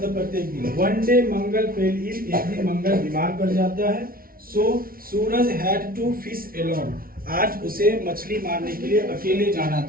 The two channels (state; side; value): late; left; 0.43 ms